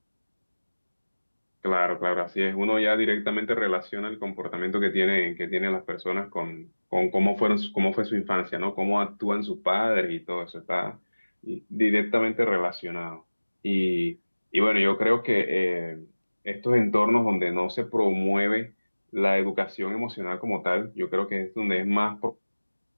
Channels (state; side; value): inverted; both; correlation -1.00